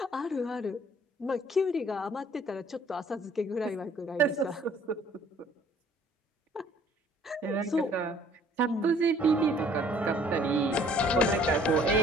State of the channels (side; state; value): both; normal; correlation 0.57